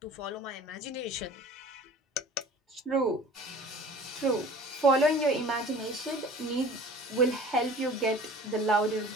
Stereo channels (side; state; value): both; normal; correlation 0.44